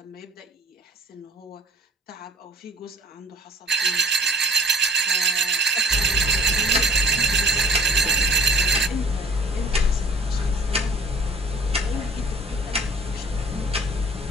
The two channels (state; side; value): normal; both; correlation 0.52